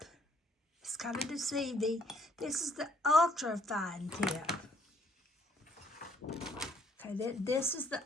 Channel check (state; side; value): normal; both; correlation 0.63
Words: It's kind of deceiving. This is the ultra fine tip. Okay, this is the